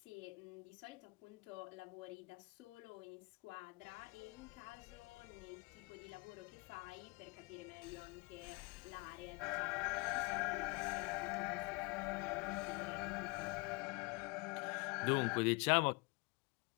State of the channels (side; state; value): right; quieter; 28.5 dB